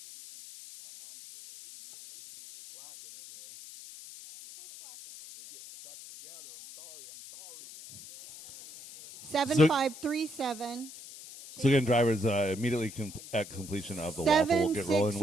7537. So again, drivers immediately at completion of the waffle will get rolling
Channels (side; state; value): left; noise; hiss, 16 dB below the sound